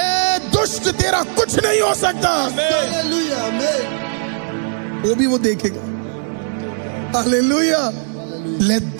दुष्ट, तेरा कुछ नहीं हो सकता, हालेलुया। वो भी वो देखेगा, hallelujah. Let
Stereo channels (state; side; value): silent; left; digital silence